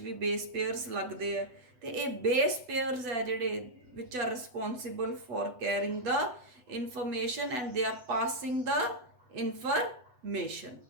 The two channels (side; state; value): left; late; 8.0 ms